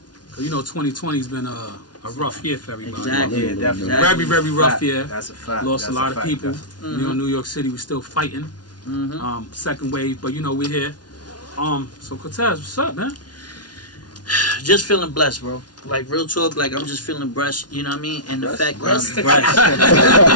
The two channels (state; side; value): late; right; 0.69 ms